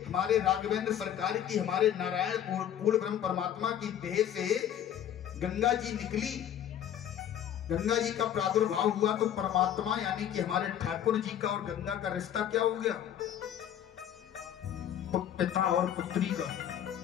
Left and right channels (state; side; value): quieter; right; 10.1 dB